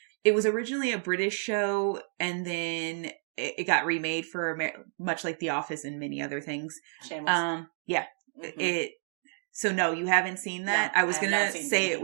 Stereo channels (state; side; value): silent; left; 58 dB below the other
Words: was originally a British show, and then it got remade for much like The Office and many other things. Shameless. Yeah. Mm-hmm. So no, you haven't seen that? No, I was gonna say it